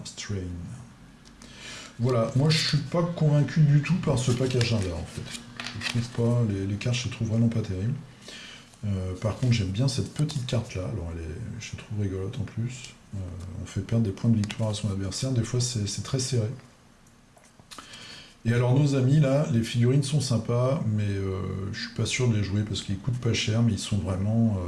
strain. Voilà, moi je suis pas convaincu du tout par ce pack agenda en fait. Je trouve pas, les cartes je les trouve vraiment pas terribles. Par contre j'aime bien cette petite carte là, alors je la trouve rigolote en plus. On fait perdre des points de victoire à son adversaire, des fois c'est très serré. Et alors nos amis là, les figurines sont sympas, mais je suis pas sûr de les jouer parce qu'ils coûtent pas cher, mais ils sont vraiment...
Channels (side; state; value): both; identical; correlation 1.00